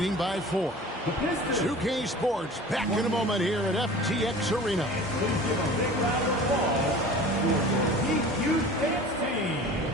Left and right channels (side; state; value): both; normal; correlation 0.41